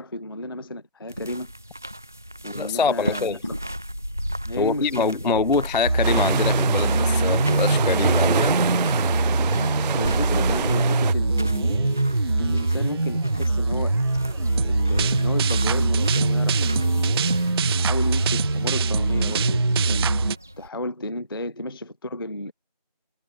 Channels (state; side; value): inverted; both; correlation -0.61